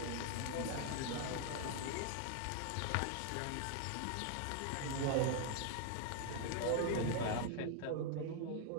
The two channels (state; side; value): different; both; correlation 0.00